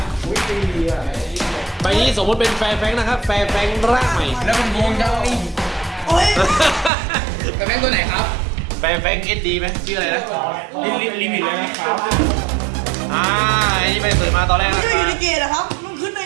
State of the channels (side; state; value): left; drops out; at 6.9 s